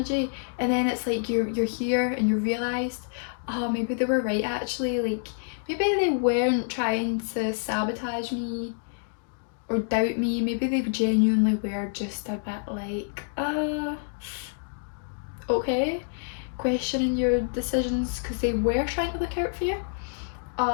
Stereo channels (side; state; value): right; silent; digital silence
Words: and then it's like you're here and you realised, oh, maybe they were right actually, like maybe they weren't trying to sabotage me or doubt me, maybe they genuinely were just a bit like, okay, questioning your decisions because they were trying to look out for you,